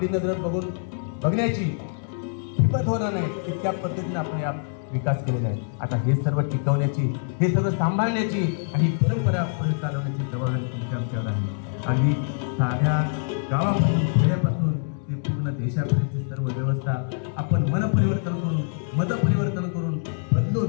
नजर बघण्याची हिंमत होणार नाही. इतक्या पद्धतीने आपण या विकास केलेला आहे. आता हे सर्व टिकवण्याची, हे सर्व सांभाळण्याची आणि परंपरा पुढे चालवण्याची जबाबदारी तुमच्या आमच्यावर आहे. आणि साध्या गावापासून, खेड्यापासून ते पूर्ण देशापर्यंतची सर्व व्यवस्था आपण मनपरिवर्तन करून, मतपरिवर्तन करून बदलून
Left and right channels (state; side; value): silent; right; digital silence